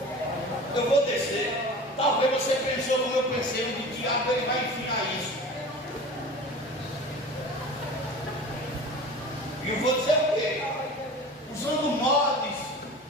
Eu vou descer. Talvez você pensou como eu pensei, o diabo ele vai enfiar isso. E eu vou dizer o quê? Usando mods.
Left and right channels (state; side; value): normal; both; correlation 0.37